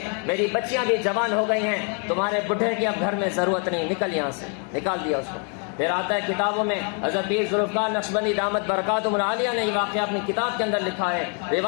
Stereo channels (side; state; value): right; quieter; 39.9 dB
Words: میری بچیاں بھی جوان ہو گئی ہیں، تمہارے بڈھے کی اب گھر میں ضرورت نہیں، نکل یہاں سے، نکال دیا اس کو۔ پھر آتا ہے کتابوں میں، حضرت پیر ذوالفقار نقشبندی دامت برکاتہم العالیہ نے یہ واقعہ اپنی کتاب کے اندر لکھا ہے۔